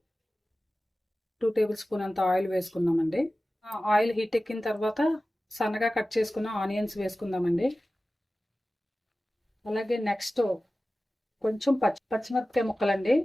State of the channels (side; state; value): both; normal; correlation 0.96